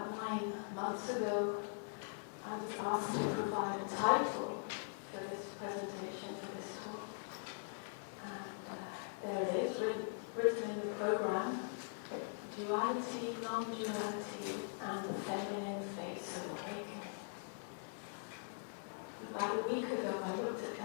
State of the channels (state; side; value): silent; right; digital silence